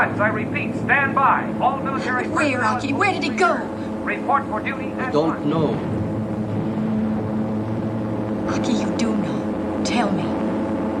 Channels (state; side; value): identical; both; correlation 1.00